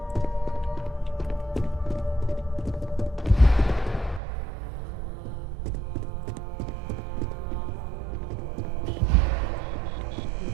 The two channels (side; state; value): left; drops out; at 4.2 s